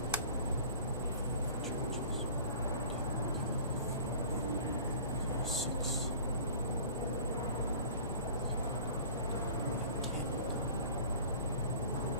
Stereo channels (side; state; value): both; inverted; correlation -0.45